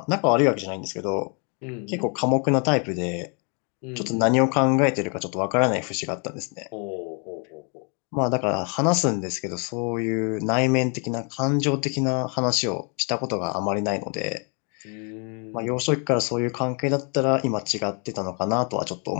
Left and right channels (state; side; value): quieter; right; 36.9 dB